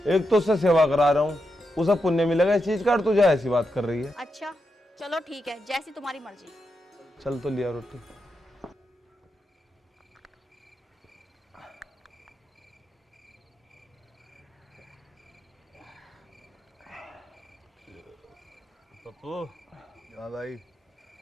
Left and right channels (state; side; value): normal; both; correlation 0.85